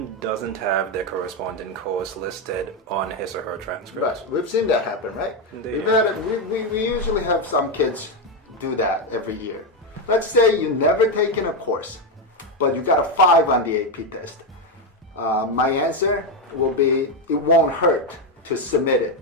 doesn't have the corresponding course listed on his or her transcript? Right, we've seen that happen, right? We usually have some kids do that every year. Let's say you never taken a course, but you got a 5 on the AP test. My answer will be, it won't hurt to submit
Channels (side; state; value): both; normal; correlation 0.07